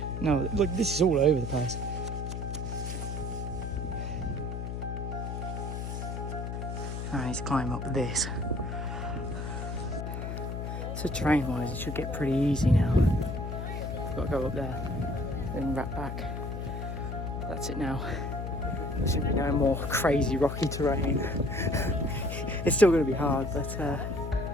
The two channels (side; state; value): left; noise; hum, 4 dB below the sound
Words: No, look, this is all over the place. I need to climb up this. So terrain-wise, it should get pretty easy now. I've got to go up there, then wrap back. That's it now. There shouldn't be no more crazy rocky terrain. It's still going to be hard, but